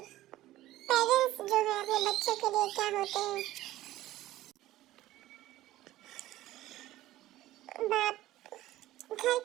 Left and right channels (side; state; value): left; quieter; 15.5 dB